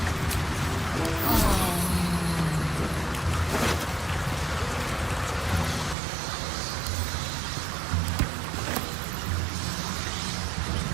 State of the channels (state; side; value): drops out; left; at 6.0 s